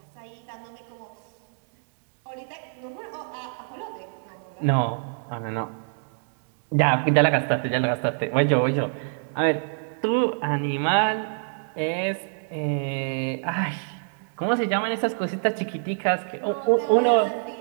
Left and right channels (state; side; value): silent; left; digital silence